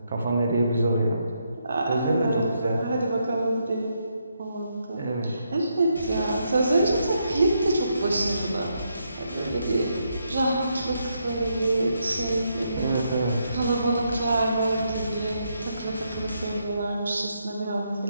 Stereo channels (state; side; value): inverted; both; correlation -0.79